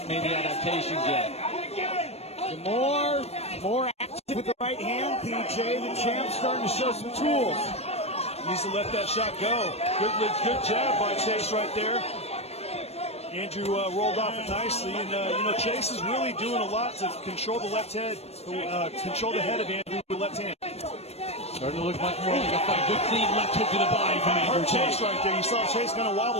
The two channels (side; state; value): right; late; 0.30 ms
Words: made the adaptations yet. Demoor, more active with the right hand. PJ, the champ, starting to show some tools. Needs to let that shot go. Good jab by Chase right there. Andrew rolled off it nicely, and you know, Chase is really doing a lot to control the left head, control the head of Andrew with the left hand. Starting to look much more like a fight. Good clean left hook to the body from Andrew Tate. Chase right there. You saw Chase kind of